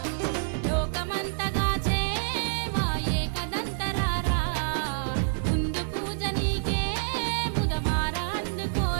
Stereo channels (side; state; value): left; silent; 60 dB below the other